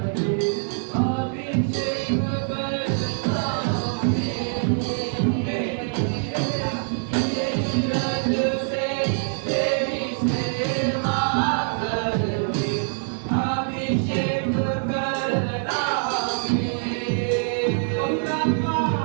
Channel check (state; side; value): silent; left; digital silence